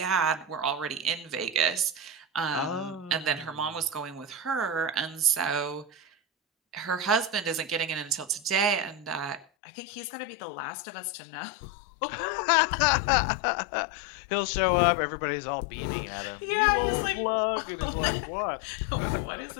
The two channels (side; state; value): right; drops out; at 9.5 s